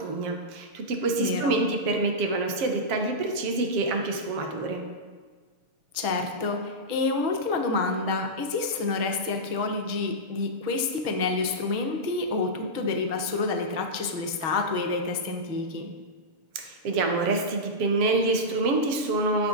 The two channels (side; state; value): left; late; 6.9 ms